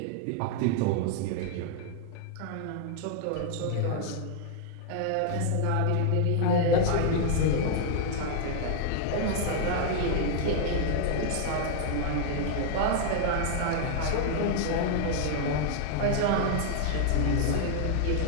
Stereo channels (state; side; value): different; both; correlation 0.00